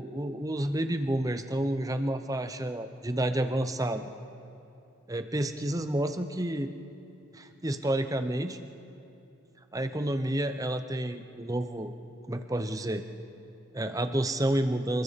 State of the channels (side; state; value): both; normal; correlation 0.81